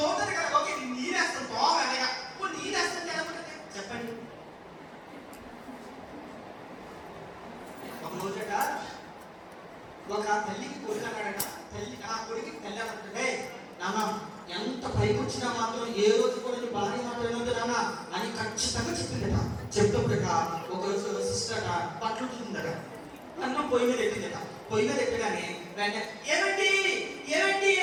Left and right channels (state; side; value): identical; both; correlation 1.00